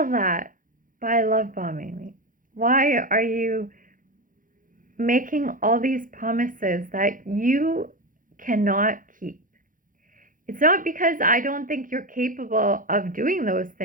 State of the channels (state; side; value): late; left; 0.39 ms